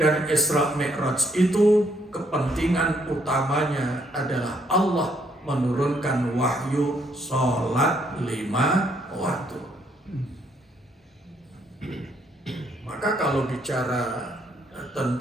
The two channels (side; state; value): both; normal; correlation 0.70